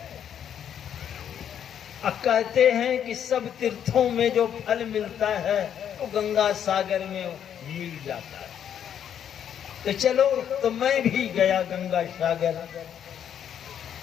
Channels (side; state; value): right; quieter; 9.2 dB